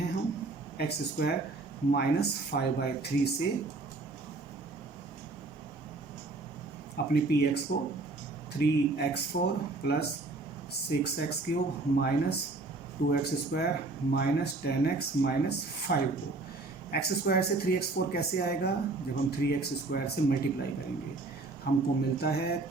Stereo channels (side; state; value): left; quieter; 3.4 dB